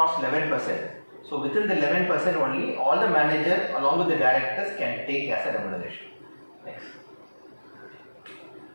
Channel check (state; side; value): inverted; both; correlation -1.00